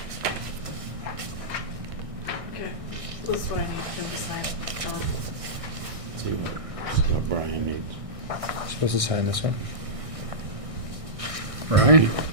Okay, this is what I need to sign. See what Brian needs. Supposed to sign this one? Brian,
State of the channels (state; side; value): late; left; 1.6 ms